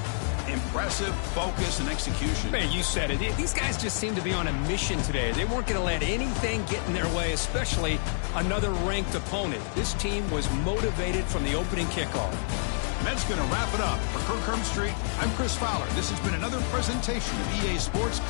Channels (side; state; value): right; silent; digital silence